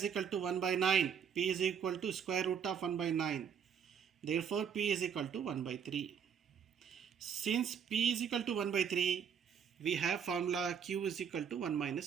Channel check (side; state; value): left; quieter; 7.5 dB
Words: equal to 1 by 9. P is equal to square root of 1 by 9. Therefore, P is equal to 1 by 3. Since P is equal to 1 by 3, we have formula Q is equal to 1